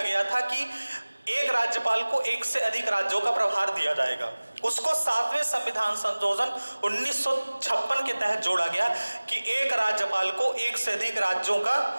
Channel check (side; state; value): both; inverted; correlation -1.00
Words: गया था कि एक राज्यपाल को एक से अधिक राज्यों का प्रभार दिया जाएगा। उसको 7वें संविधान संशोधन 1956 के तहत जोड़ा गया कि एक राज्यपाल को एक से अधिक राज्यों का